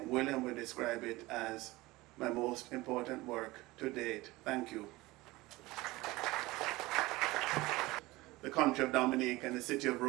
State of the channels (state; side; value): quieter; left; 20.3 dB